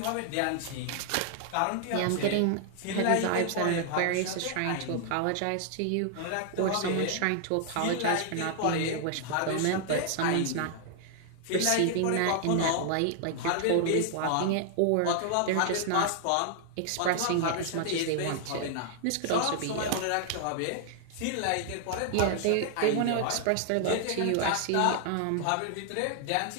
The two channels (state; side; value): different; both; correlation 0.00